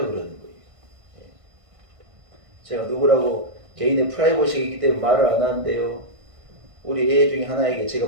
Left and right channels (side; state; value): left; late; 1.6 ms